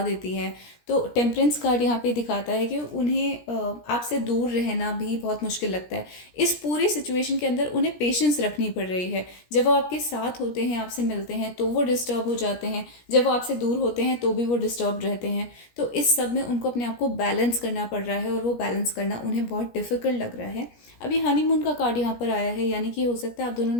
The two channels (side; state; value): right; late; 17 ms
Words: देती है। तो टेम्परेंस कार्ड यहाँ पे दिखाता है कि उन्हें आपसे दूर रहना भी बहुत मुश्किल लगता है। इस पूरी सिचुएशन के अंदर उन्हें पेशेंस रखनी पड़ रही है। जब वो आपके साथ होते हैं, आपसे मिलते हैं, तो वो डिस्टर्ब हो जाते हैं। जब वो आपसे दूर होते हैं तो भी वो डिस्टर्ब रहते हैं। तो इस सब में उनको अपने आप को बैलेंस करना पड़ रहा है और वो बैलेंस करना उन्हें बहुत डिफ़िकल्ट लग रहा है। अभी हनीमून का कार्ड यहाँ पर आया है, यानी कि हो सकता है आप दोनों